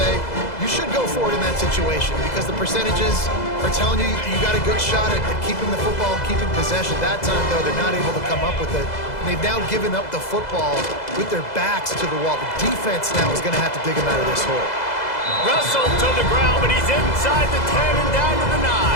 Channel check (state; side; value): late; right; 2.0 ms